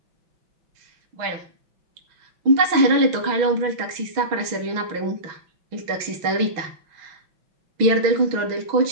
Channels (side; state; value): left; late; 6.2 ms